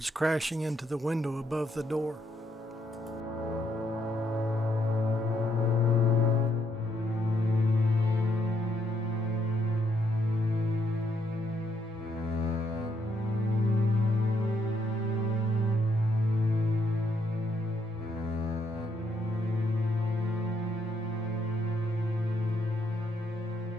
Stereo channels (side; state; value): both; normal; correlation 0.74